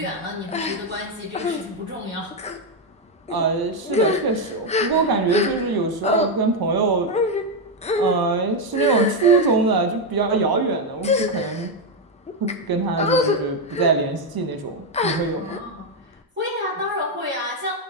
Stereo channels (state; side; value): normal; both; correlation 0.04